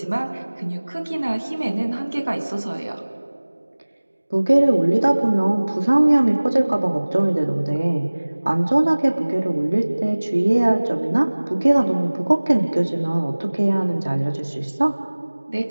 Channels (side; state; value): both; inverted; correlation -1.00